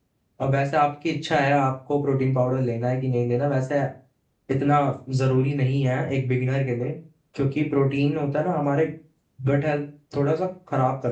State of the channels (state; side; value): identical; both; correlation 1.00